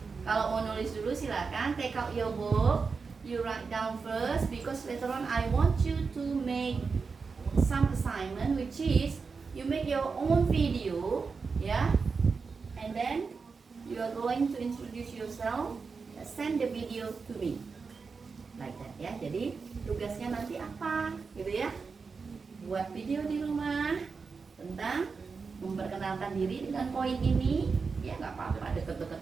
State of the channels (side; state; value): left; quieter; 4.9 dB